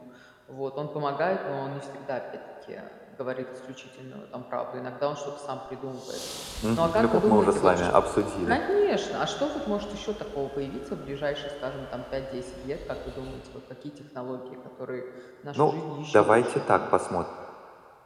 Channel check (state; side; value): identical; both; correlation 1.00